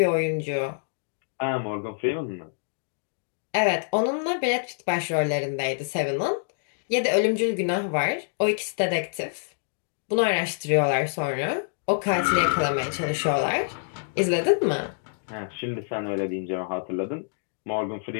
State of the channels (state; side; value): silent; right; digital silence